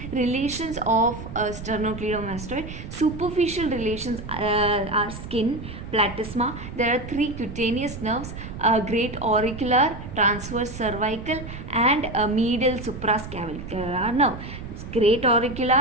of sternocleidomastoid. Superficial relations are skin, platysma. There are three cutaneous nerves: great auricular, transverse cervical, and medial supraclavicular nerve. Great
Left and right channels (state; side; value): noise; right; rumble, 10 dB below the sound